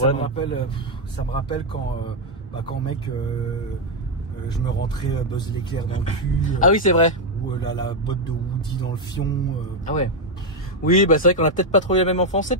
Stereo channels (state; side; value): normal; both; correlation 0.02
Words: problème? Ça me rappelle quand, mec, je me rentrais Buzz l'éclair dans le cul. Ah oui, c'est vrai. Ou la botte de Woody dans le fion. Ah ouais. Oui, bah c'est vrai qu'on a peut-être pas trouvé la même enfance. C'est